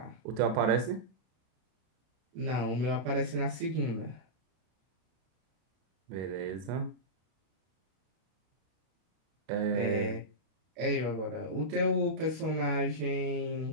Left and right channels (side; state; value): left; late; 32 ms